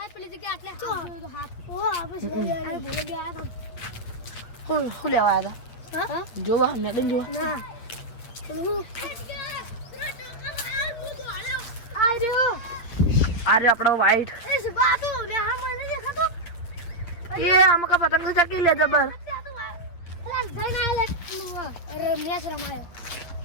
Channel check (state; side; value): late; right; 8.4 ms